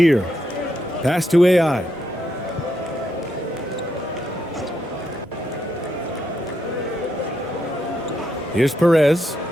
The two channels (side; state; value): both; normal; correlation 0.80